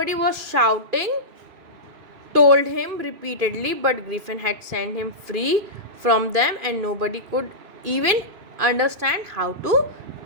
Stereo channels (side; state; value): left; late; 2.4 ms